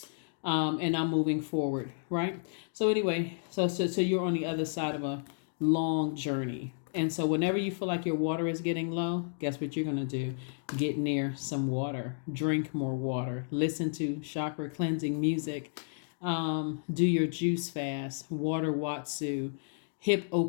and I'm moving forward, right? So anyway, so you're on the other side of a long journey. And so whenever you feel like your water is getting low, guess what you're going to do? Get near some water. Drink more water. Listen to chakra cleansing music. Do your juice fast. Water Watsu. Hip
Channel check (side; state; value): right; silent; digital silence